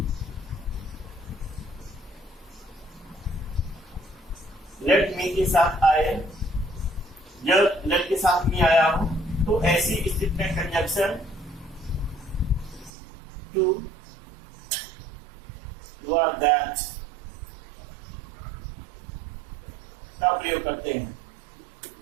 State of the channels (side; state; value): left; drops out; at 12.9 s